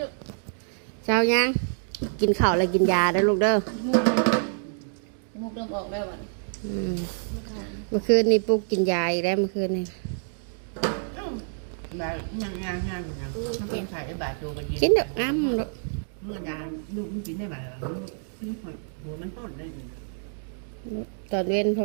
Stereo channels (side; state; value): left; silent; digital silence